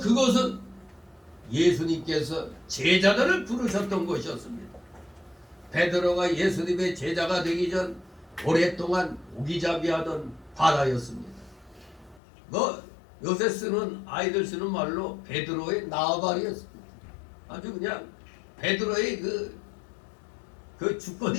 예수님께서 제자들을 부르셨던 곳이었습니다. 베드로가 예수님의 제자가 되기 전 오랫동안 오기잡이하던 바다였습니다. 뭐 요새 쓰는 아이들 쓰는 말로 베드로의 나발이었습니다. 아주 그냥 베드로의 그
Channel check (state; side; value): drops out; right; at 12.2 s